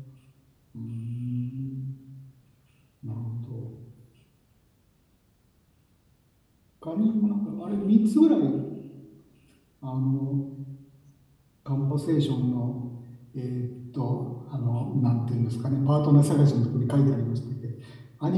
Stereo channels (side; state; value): both; identical; correlation 1.00